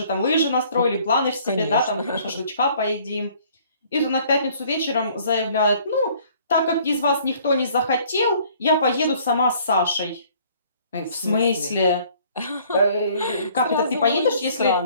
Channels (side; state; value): both; inverted; correlation -0.58